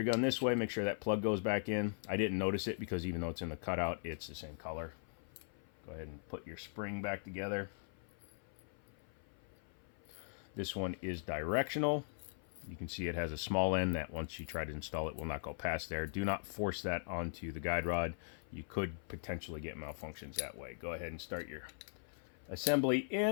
gun this way. Make sure that plug goes back in. I didn't notice it because even though it's in the cutout, it's the same color. Go ahead and put your spring back together. This one is directional. You can see it has a small end that once you try to install it will not go past there. Do not force that onto the guide rod. You could potentially get malfunctions that way. Go ahead and start your assembly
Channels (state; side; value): silent; right; 51 dB below the other